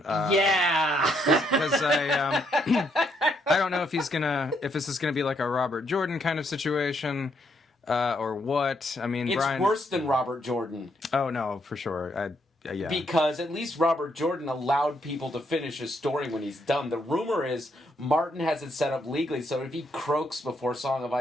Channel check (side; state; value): both; normal; correlation 0.74